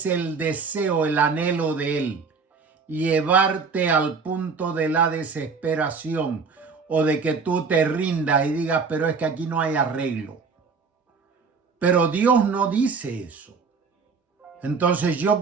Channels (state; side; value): quieter; left; 5.1 dB